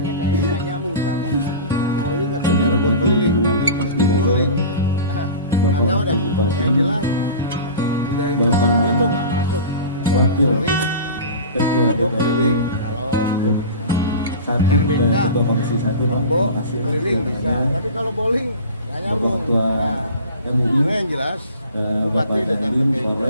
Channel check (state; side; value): inverted; both; correlation -0.36